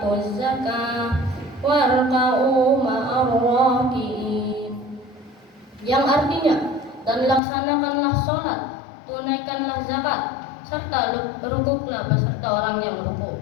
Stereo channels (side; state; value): right; drops out; at 7.4 s